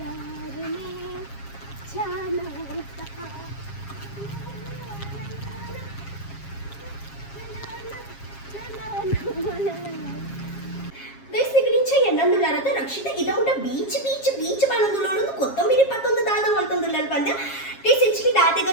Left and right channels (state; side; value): late; right; 7.4 ms